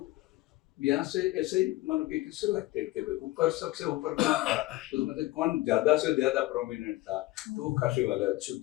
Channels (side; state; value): right; quieter; 18.5 dB